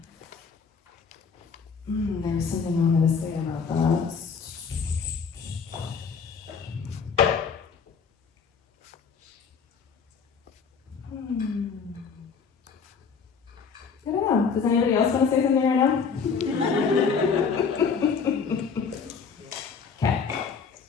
there was something I wanted to say about that. I don't know. Does anybody else want to say something right now? Okay.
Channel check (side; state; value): right; quieter; 5.8 dB